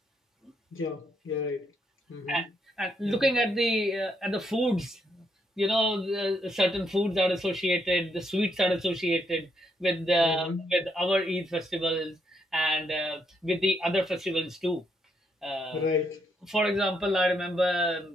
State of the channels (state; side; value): normal; both; correlation 0.76